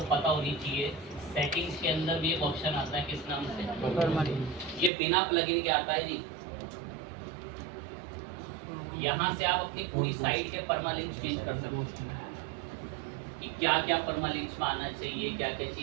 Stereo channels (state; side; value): drops out; left; at 4.9 s